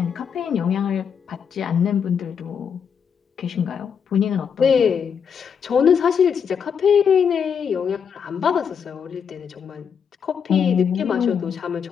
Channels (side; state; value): right; quieter; 7.1 dB